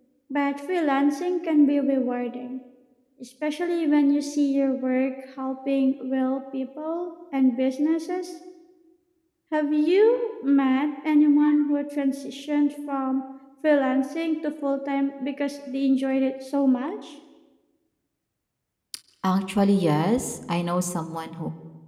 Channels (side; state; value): both; identical; correlation 1.00